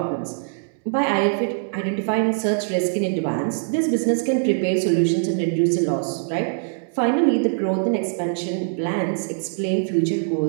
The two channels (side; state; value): left; silent; 64 dB below the other